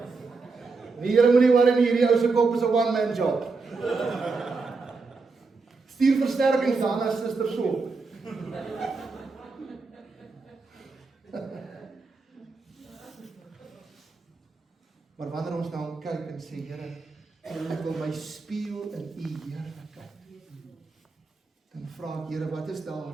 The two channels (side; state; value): left; quieter; 4.2 dB